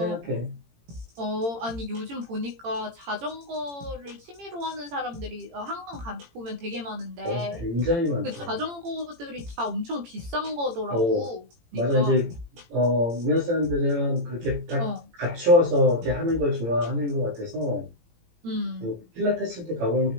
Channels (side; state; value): left; late; 18 ms